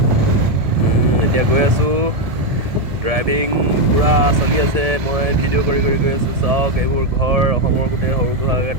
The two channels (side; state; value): left; late; 1.7 ms